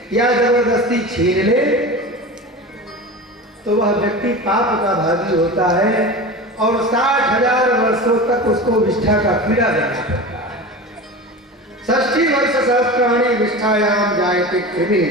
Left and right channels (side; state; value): both; normal; correlation 0.30